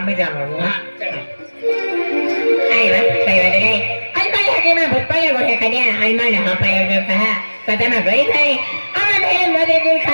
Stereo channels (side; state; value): both; inverted; correlation -1.00